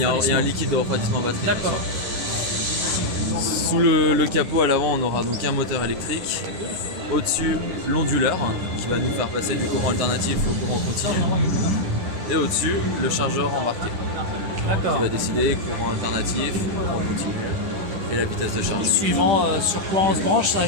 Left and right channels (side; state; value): left; late; 10 ms